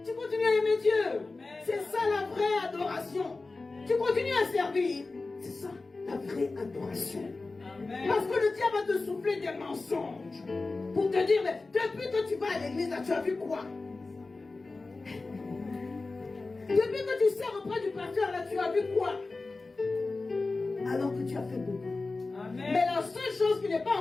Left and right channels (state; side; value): quieter; right; 3.6 dB